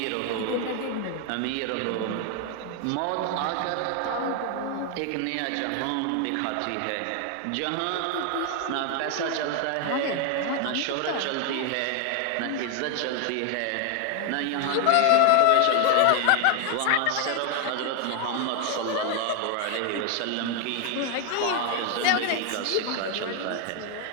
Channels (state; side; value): different; both; correlation 0.01